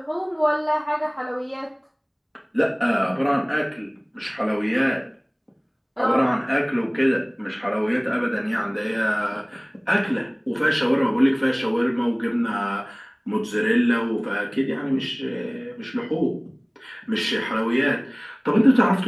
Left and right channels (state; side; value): identical; both; correlation 1.00